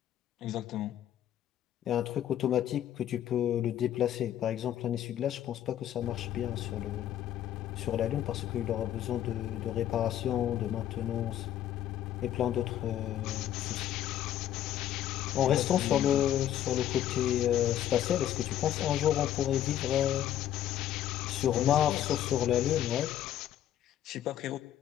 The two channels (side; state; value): right; quieter; 11.4 dB